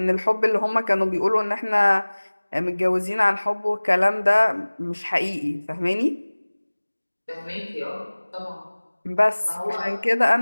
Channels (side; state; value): both; inverted; correlation -1.00